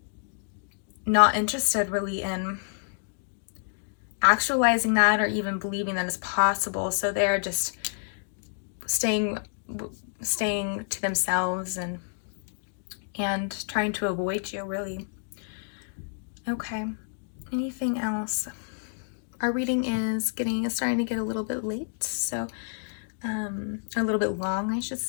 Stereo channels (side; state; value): right; silent; digital silence